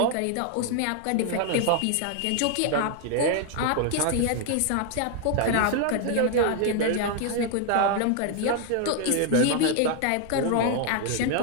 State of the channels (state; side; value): different; both; correlation 0.00